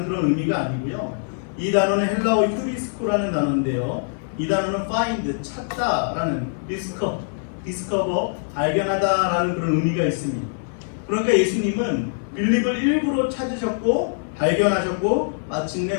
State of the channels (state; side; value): silent; right; digital silence